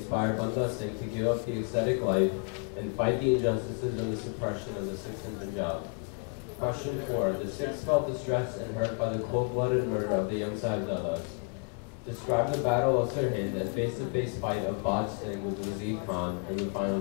Banda Singh to give up the ascetic life and fight the injustices and the suppression of the Sikhs in Punjab? Question 4. The Sikhs felt distressed and hurt by the cold-blooded murder of the young Sahibzadas. Describe the Battle of Sirhind and face-to-face fight of Baj Singh with Wazir Khan and the final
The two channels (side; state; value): right; quieter; 35.1 dB